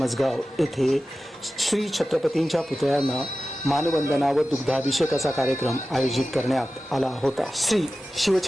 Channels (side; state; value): both; normal; correlation 0.95